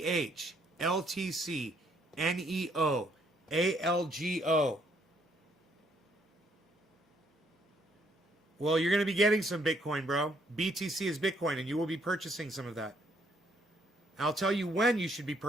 LTC, NEO, ALGO. Well, you're going to be getting some Bitcoin, bro. BTC is Bitcoin, and you will be purchasing some of that. I'll tell you when you should be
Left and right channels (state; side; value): normal; both; correlation 0.69